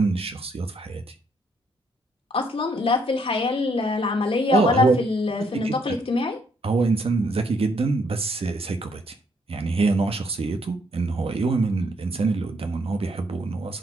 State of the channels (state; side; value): normal; both; correlation 0.70